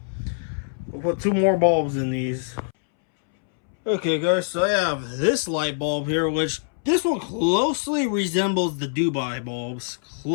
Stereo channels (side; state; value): right; silent; 63 dB below the other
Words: We'll put 2 more bulbs in these. Okay guys, so I have this light bulb here, which this one closely resembles the Dubai bulbs.